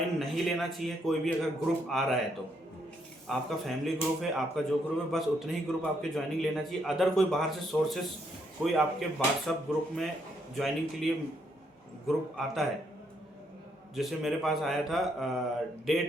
नहीं लेना चाहिए कोई भी, अगर ग्रुप आ रहा है तो आपका फैमिली ग्रुप है, आपका जो ग्रुप है, बस उतने ही ग्रुप आपके ज्वाइनिंग लेना चाहिए। अदर कोई बाहर से सोर्सेस कोई आपके व्हाट्सएप ग्रुप में ज्वाइनिंग के लिए ग्रुप आता है, जैसे मेरे पास आया था डे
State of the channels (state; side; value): normal; both; correlation 0.74